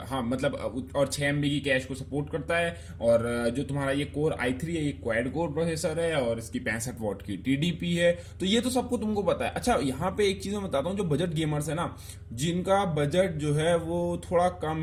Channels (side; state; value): both; identical; correlation 1.00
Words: हाँ मतलब, और 6 MB की कैश को सपोर्ट करता है। और जो तुम्हारा ये कोर i3 है, ये क्वाड कोर प्रोसेसर है और इसकी 65 वॉट की टीडीपी है। तो ये तो सबको तुमको पता है। अच्छा, यहाँ पे एक चीज मैं बताता हूँ, जो बजट गेमर्स है ना, जिनका बजट जो है वो थोड़ा कम